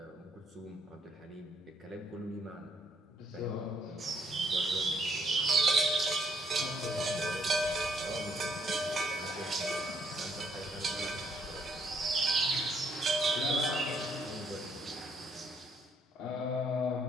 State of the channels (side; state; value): both; normal; correlation 0.70